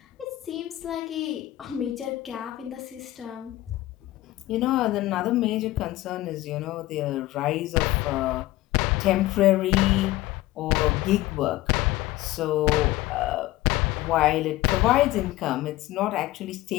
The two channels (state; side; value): quieter; right; 16.7 dB